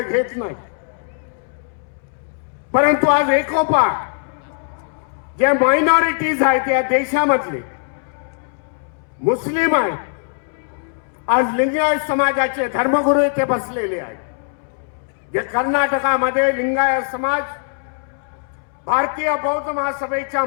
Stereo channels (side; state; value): right; silent; 66 dB below the other